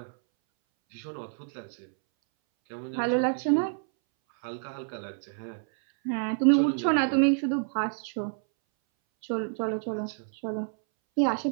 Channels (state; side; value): silent; left; 59 dB below the other